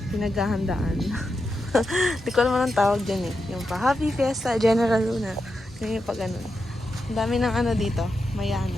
pinaghahandaan. Di ko naman ang tawag dyan eh. Yung pa Happy Fiesta, General Luna. Yung pa ganun. Ang dami ng ano dito.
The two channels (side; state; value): both; normal; correlation 0.87